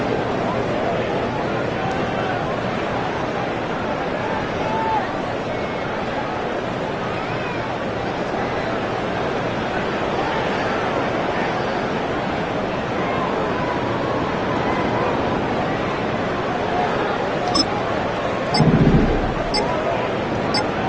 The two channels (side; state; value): both; identical; correlation 1.00